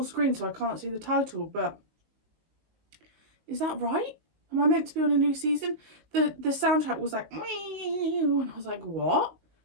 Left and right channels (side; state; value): left; late; 19 ms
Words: screen so I can't see the title, but is that right? Am I meant to be on a new season? The soundtrack was like, and I was like, what?